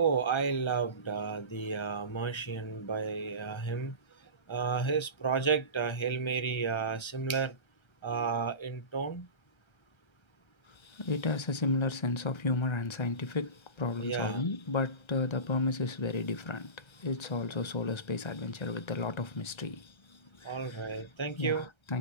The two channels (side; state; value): right; late; 1.3 ms